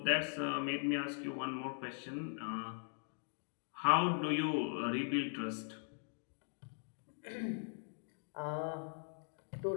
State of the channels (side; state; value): right; silent; 51 dB below the other